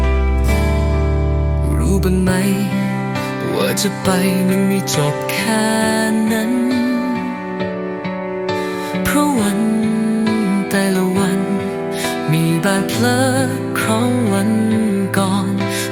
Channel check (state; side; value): identical; both; correlation 1.00